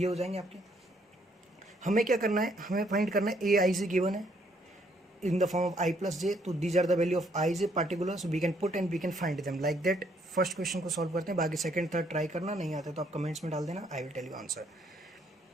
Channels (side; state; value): both; normal; correlation 0.68